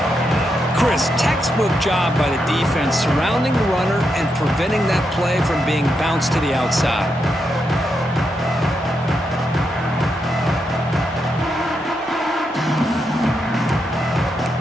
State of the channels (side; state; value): both; normal; correlation 0.83